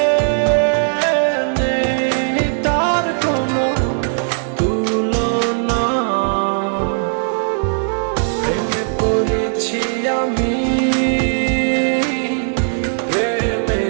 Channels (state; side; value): silent; left; digital silence